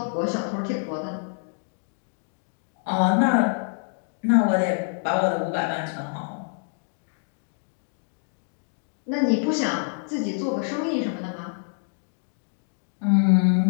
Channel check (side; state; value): right; silent; 61 dB below the other